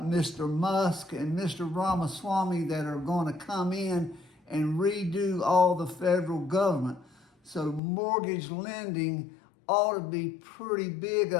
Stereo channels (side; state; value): right; drops out; at 7.8 s